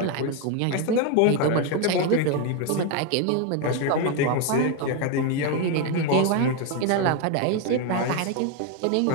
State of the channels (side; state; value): both; different; correlation 0.01